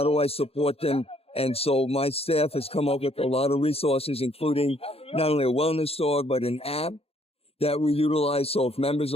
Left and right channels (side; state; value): right; late; 0.29 ms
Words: do I support them? And so my staff has come up with a lot of resources, including not only a wellness dog, but an app that we utilize. So if members are